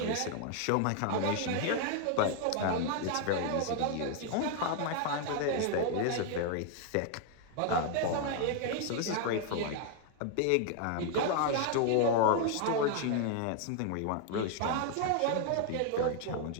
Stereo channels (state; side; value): different; both; correlation 0.00